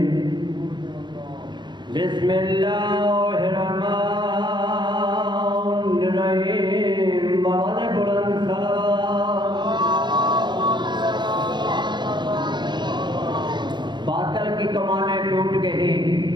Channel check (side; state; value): left; late; 0.22 ms